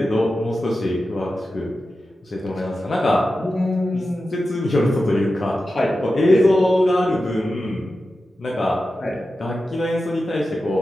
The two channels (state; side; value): normal; both; correlation 0.92